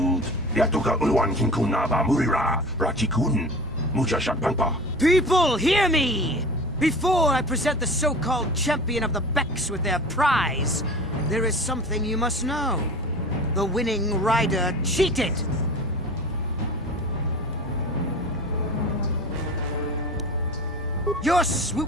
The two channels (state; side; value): normal; both; correlation 0.37